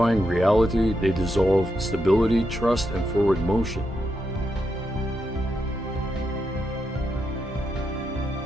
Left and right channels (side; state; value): both; normal; correlation 0.83